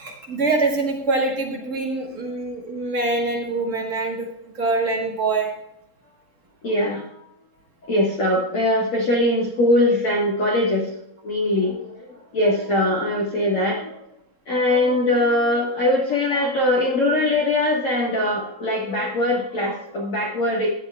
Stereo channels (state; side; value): late; right; 3.7 ms